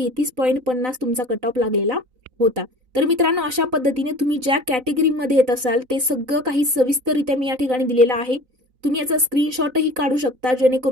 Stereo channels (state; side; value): late; left; 3.9 ms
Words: तुमचा कट ऑफ लागलेला होता. तर मित्रांनो, अशा पद्धतीने तुम्ही ज्या कॅटेगरीमध्ये येत असाल ते सगळं काही सविस्तररित्या मी या ठिकाणी दिलेलं आहे. तुम्ही याचा स्क्रीनशॉटही काढू शकता,